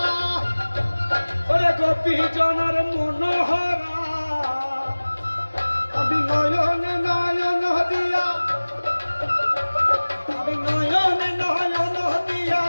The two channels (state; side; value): inverted; both; correlation -1.00